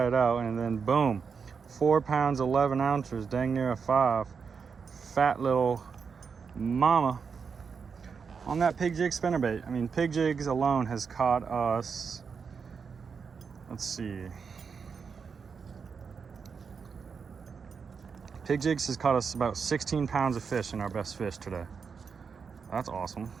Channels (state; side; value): quieter; left; 5.8 dB